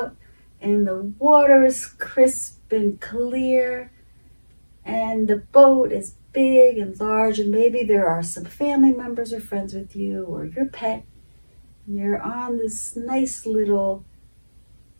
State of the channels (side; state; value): both; inverted; correlation -1.00